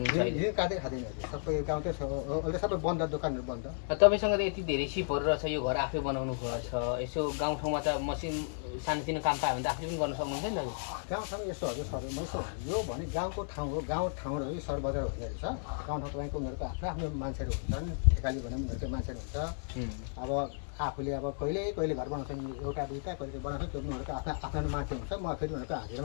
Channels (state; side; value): silent; right; 55 dB below the other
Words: ऋण काट्दै खाँदैन, सबै गाउँकै अहिले सबै बन्द, दोकानहरू बन्द। तपाईँसँग त यति धेरै सिपहरू रहेछ, यो घर आफै बनाउनु भएको छ, यसो गाउँठाउँमा त मसिन सानोतिनो काम पायो भने त आफूले पनि गर्न सक्नुहुन्छ नि त। गाउँठाउँ यस्तो हजुर सर, यसो यो भने गाउँको ठाउँ हो, गाउँ ठाउँहरू सहर बजार हुने रहेछ। गाउँठाउँ तपाईँको उनीहरूको आफ्नो आफ्नो मान्छेहरू हुन्छन्, ठेकाली भने उनीहरूकै मान्छेहरू हुन्छ। अब आफूले अब कहिले घर बनाउँछ, एउटा दुईवटा कहिले बनाउँछ, त्यो उनीहरूको आफ्नो मान्छे हुन्छ। म फेरि उनीहरूको